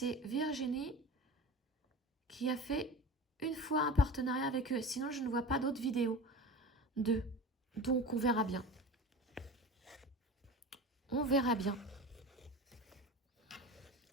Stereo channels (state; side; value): normal; both; correlation 0.32